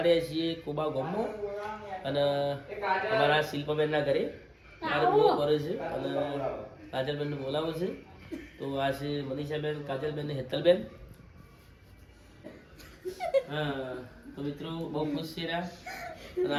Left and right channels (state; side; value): identical; both; correlation 1.00